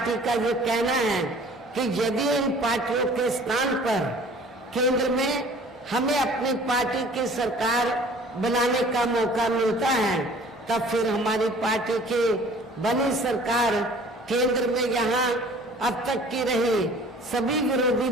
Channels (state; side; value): normal; both; correlation 0.50